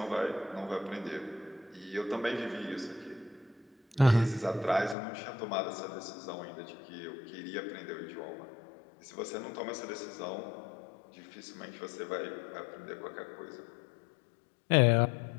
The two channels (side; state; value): right; drops out; at 5.0 s